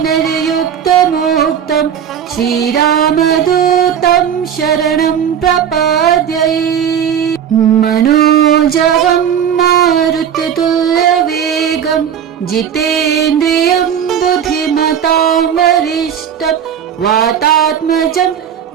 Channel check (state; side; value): quieter; left; 8.7 dB